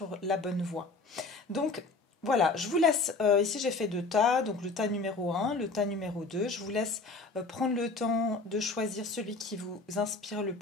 la bonne voie. Donc voilà, je vous laisse, ici j'ai fait 2 tas, donc le tas numéro 1, le tas numéro 2. Je vous laisse prendre le temps de choisir celui qui vous inspire le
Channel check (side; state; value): right; quieter; 3.7 dB